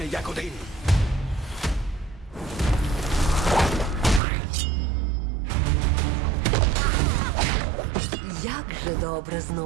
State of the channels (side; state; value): left; drops out; at 4.2 s